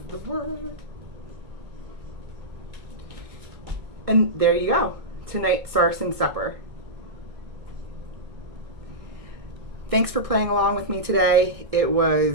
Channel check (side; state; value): left; late; 1.6 ms